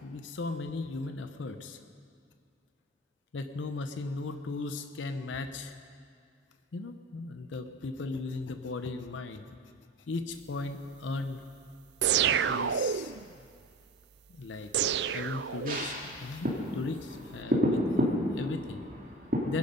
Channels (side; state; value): both; normal; correlation 0.35